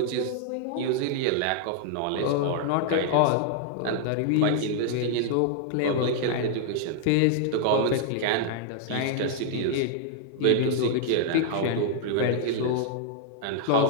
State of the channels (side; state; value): both; different; correlation -0.01